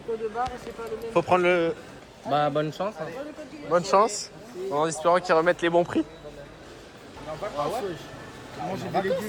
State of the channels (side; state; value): both; identical; correlation 1.00